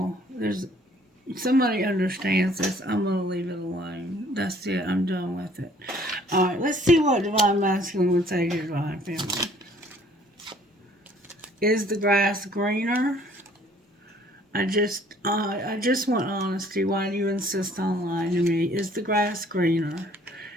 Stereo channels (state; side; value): normal; both; correlation 0.58